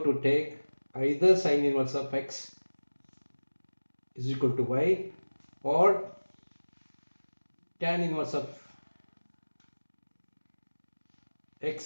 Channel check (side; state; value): both; inverted; correlation -1.00